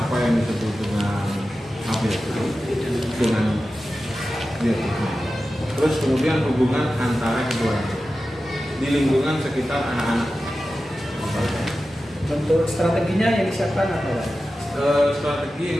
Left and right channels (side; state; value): both; normal; correlation 0.93